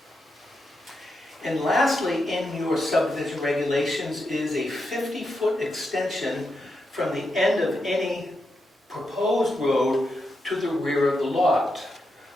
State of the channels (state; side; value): normal; both; correlation 0.85